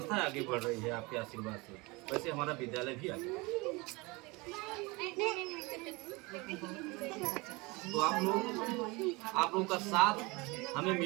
आगे बढ़ रही है आपके आशीर्वाद से, वैसे हमारा विद्यालय भी आगे। तो आप लोगों का साथ हमें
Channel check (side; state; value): left; quieter; 25.2 dB